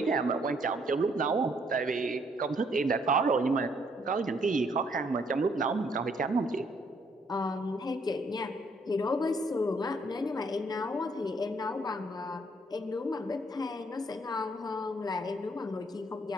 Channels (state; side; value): normal; both; correlation 0.68